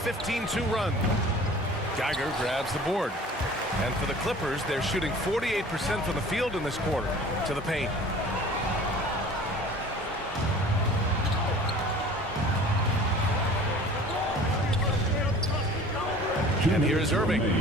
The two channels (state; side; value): normal; both; correlation 0.45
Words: run. Geiger grabs the board. And for the Clippers, they're shooting 48% from the field in this quarter. To the paint. And here's Irving.